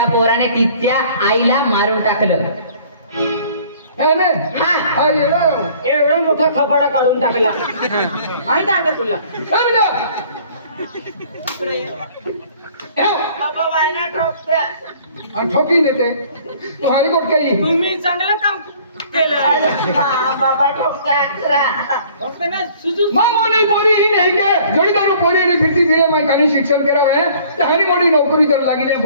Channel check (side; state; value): both; inverted; correlation -0.54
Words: पोराने तिच्या आईला मारून टाकलं नाही नाही हा हा येडा. एवढा मोठा खपाडा काढून टाकला माहित आहे का तुला समजा. बाबा वायना ठोकत्या. आणि ठोकी देते तू हायकोर्ट काही तुम्ही चांगलं काम केलं बाबा ठोकत्या. फक्त ना सुजू मामोने पोरी ही नहीं के जोड़ीदारो पोरी ने फिरती दिए मैं कहीं शिक्षण करा है तहानी मोड़ी नौकरी कर लगी ने